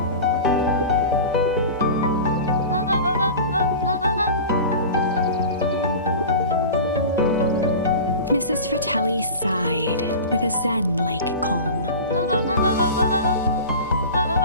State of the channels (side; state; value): both; inverted; correlation -0.34